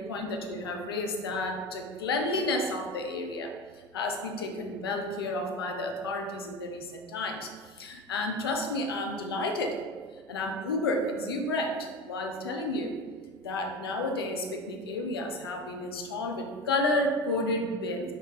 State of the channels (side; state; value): both; normal; correlation 0.25